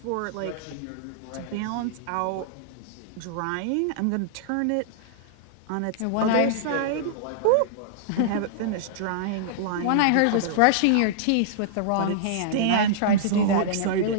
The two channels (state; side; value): different; both; correlation -0.02